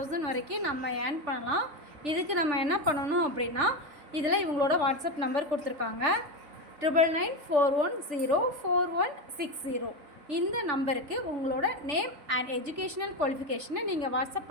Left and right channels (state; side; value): late; left; 3.4 ms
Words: வரைக்கும் நம்ம ஏர்ன் பண்ணலாம். இதுக்கு நம்ம என்ன பண்ணணும் அப்படின்னா, இதில் இவங்களோட வாட்ஸ்அப் நம்பர் கொடுத்துருக்காங்க 9994104160. இந்த நம்பருக்கு உங்களோட நேம் அண்ட் எஜுகேஷனல் குவாலிஃபிகேஷனை நீங்கள் வாட்ஸ்அப்